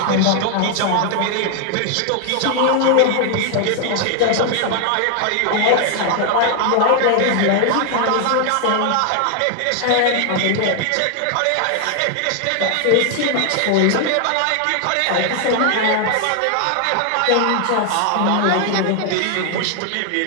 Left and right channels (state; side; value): different; both; correlation 0.00